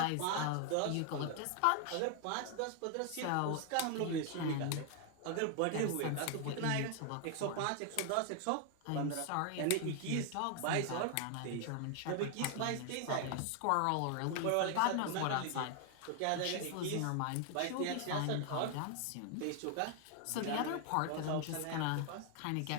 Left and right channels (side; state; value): both; different; correlation 0.00